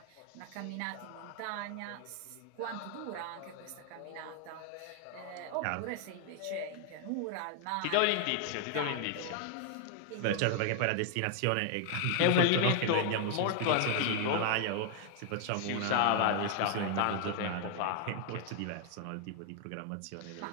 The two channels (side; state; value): both; different; correlation 0.00